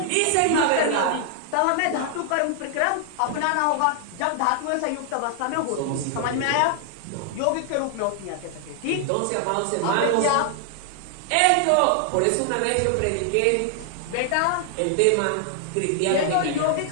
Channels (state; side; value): different; both; correlation 0.00